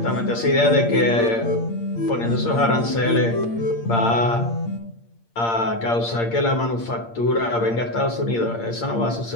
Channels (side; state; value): right; late; 8.7 ms